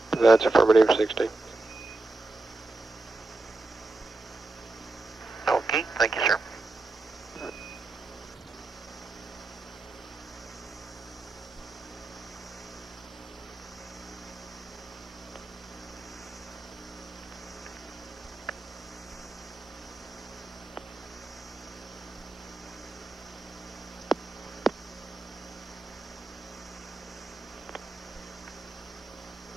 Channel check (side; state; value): left; quieter; 3.1 dB